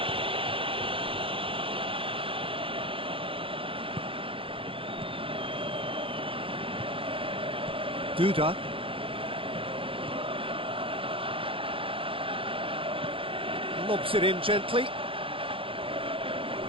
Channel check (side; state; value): left; late; 0.26 ms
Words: Duda. Lobs it in gently.